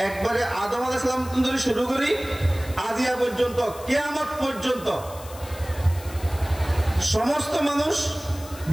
একবারে আদম আলাইহিস সালাম থেকে শুরু করি আজিয়া পর্যন্ত, কিয়ামত পর্যন্ত সমস্ত মানুষ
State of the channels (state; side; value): noise; left; hiss, 17 dB below the sound